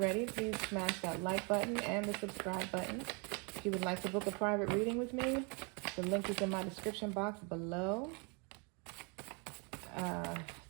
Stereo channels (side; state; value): left; quieter; 33.7 dB